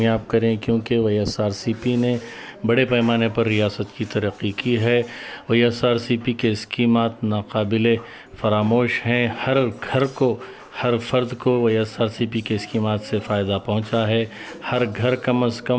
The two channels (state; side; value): identical; both; correlation 1.00